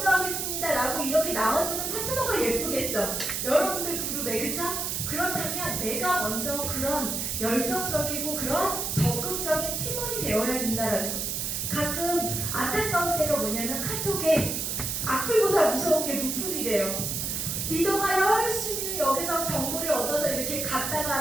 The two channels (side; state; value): right; noise; hiss, 2 dB below the sound